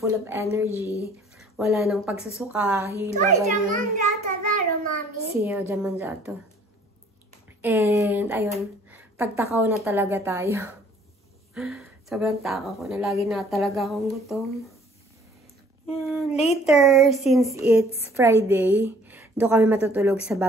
of energy. Wala nang pagsusuka, hilo, ganyan. Siya, jamanjato. And, ayun. Tagtakaw na talaga tayo. Sobrang takaw ko na. Lagi na talaga akong gutom. And later, since it's Friday, doon kami matutulog sa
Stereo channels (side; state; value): both; normal; correlation 0.56